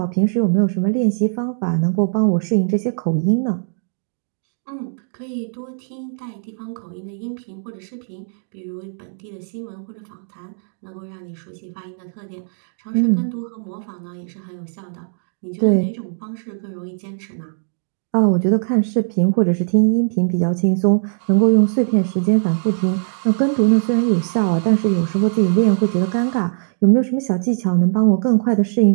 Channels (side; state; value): left; silent; digital silence